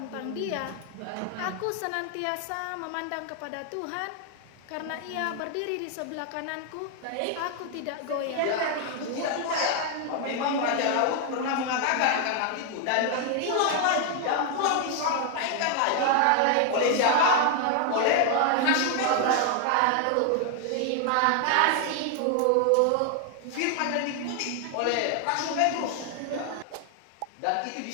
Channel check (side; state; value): both; different; correlation 0.00